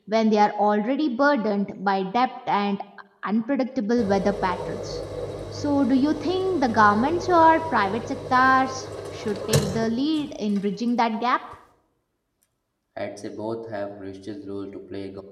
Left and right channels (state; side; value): identical; both; correlation 1.00